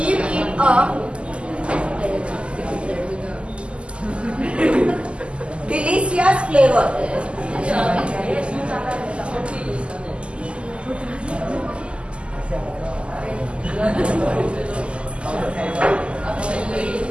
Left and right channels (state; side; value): late; left; 0.053 ms